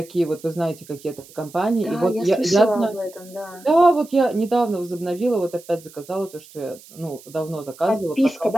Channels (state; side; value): noise; right; hiss, 22 dB below the sound